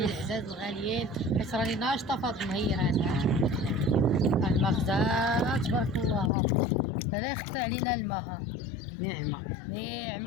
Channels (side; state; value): right; drops out; at 6.3 s